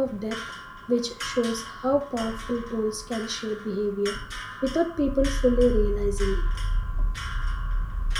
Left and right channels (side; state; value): both; identical; correlation 1.00